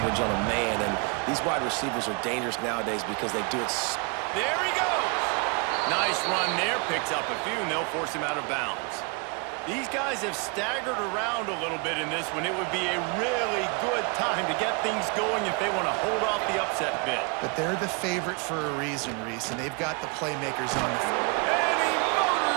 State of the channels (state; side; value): quieter; left; 32.9 dB